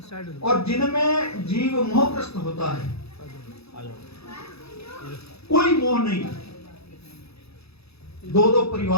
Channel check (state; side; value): late; right; 0.78 ms